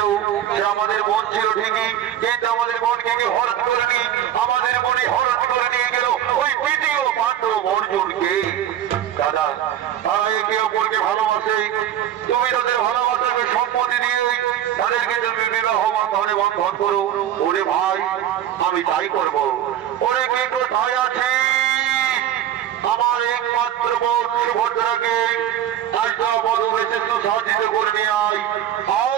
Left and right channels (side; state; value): left; quieter; 11.0 dB